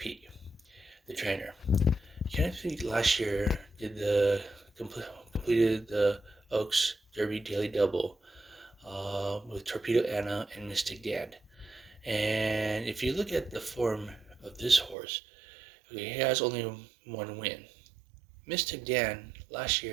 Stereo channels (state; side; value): drops out; left; at 15.0 s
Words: the trainer. Kenneth McPeek last year completed the Oaks Derby daily double with Torpedo Anna and Mystic Dan. And if you look at the form of this horse, he has only one win. Mystic Dan last